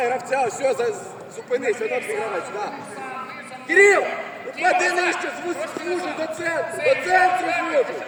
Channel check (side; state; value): both; identical; correlation 1.00